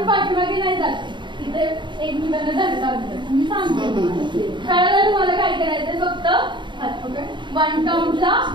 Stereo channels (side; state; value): left; late; 0.23 ms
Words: आपण पाठीमागे नाही जाते, तिथे एकमेकांना धक्का लागतो. मी सांगते खेळायला तुम्हाला काय करायचं, फक्त हात पकड. 1 काउंटला